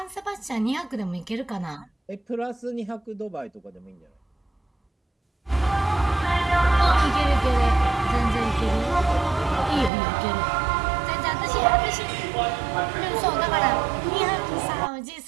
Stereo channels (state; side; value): drops out; left; at 9.9 s